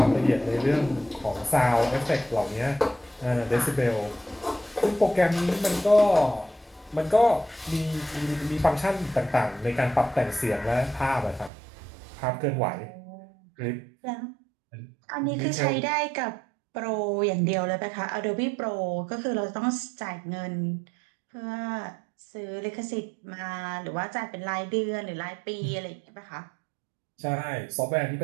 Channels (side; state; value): left; drops out; at 11.5 s